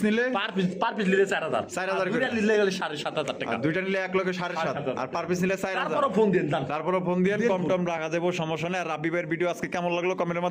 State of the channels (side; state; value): both; identical; correlation 1.00